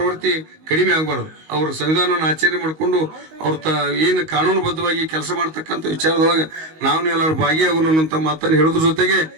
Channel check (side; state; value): left; late; 19 ms